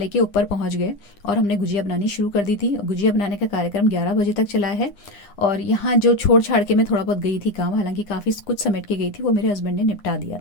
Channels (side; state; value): right; late; 9.9 ms